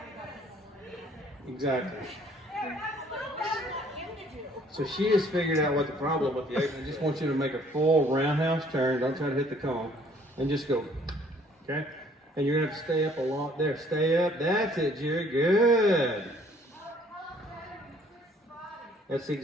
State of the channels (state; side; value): normal; both; correlation 0.59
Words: Exactly. So she has figured out what the problem with the apron. I just want you to make a full roundhouse turn. Don't try to hit the cone. And just go. Okay? And you're going to have to stay up a lot there. Stay up. That's it, Jerry. Good. That's